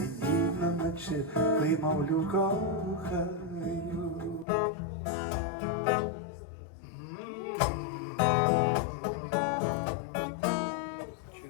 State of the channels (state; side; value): drops out; right; at 4.5 s